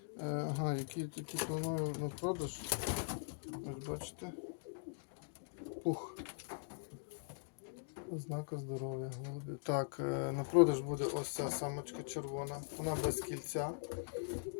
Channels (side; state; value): right; silent; digital silence